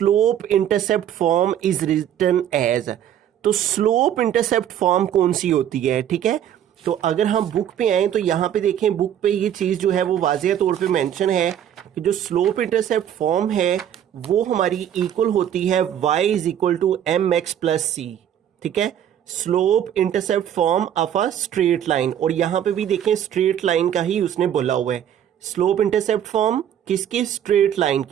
intercept form is written as. तो स्लोप इंटरसेप्ट फॉर्म कौन सी होती है, ठीक है। तो अगर हम बुक पे आए तो यहाँ पे देखें, बुक पे ये चीज़ जो है वो वाज़ेह तौर पे मेंशन है कि जो स्लोप इंटरसेप्ट फॉर्म है वो हमारी इक्वल होती है y is equal to mx plus C, ठीक है। Slope intercept form of a straight line, और यहाँ पे भी देखें स्ट्रेट लाइन का ही उसने बोला हुआ है। स्लोप इंटरसेप्ट फॉर्म किसकी? स्ट्रेट लाइन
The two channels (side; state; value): left; quieter; 10.1 dB